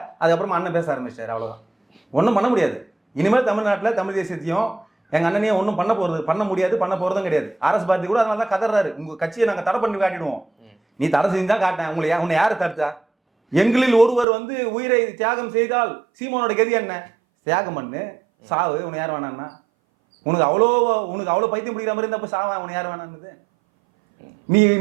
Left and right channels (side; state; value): left; drops out; at 14.2 s